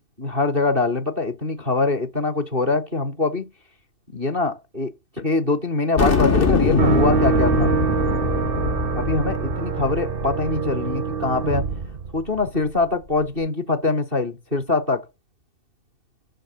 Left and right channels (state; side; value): late; left; 2.6 ms